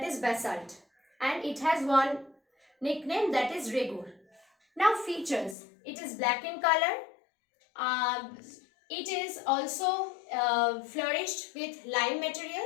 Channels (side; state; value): right; drops out; at 5.6 s